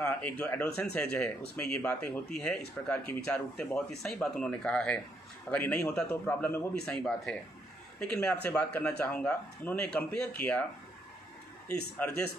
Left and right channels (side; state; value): both; normal; correlation 0.74